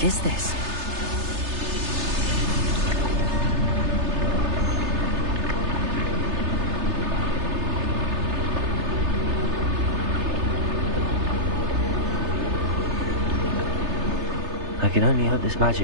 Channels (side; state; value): left; late; 3.3 ms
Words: is this? I can only hope this